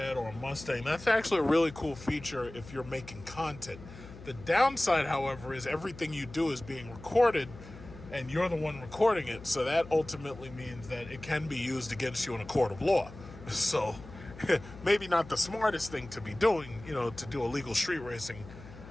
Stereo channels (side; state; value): left; noise; hum, 16 dB below the sound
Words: or a Mustang, that's actually a really cool feature if you're making content. The downside, however, is everything you do is being recorded and you're the one recording it, so that ultimately means that it can be used against you in a court of law. So maybe not the smartest thing to be doing, to do illegal street racing,